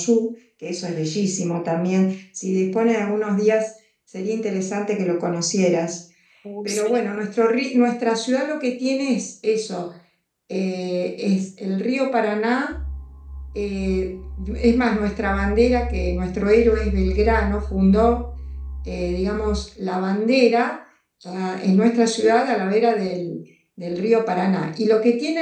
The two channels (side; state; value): both; identical; correlation 1.00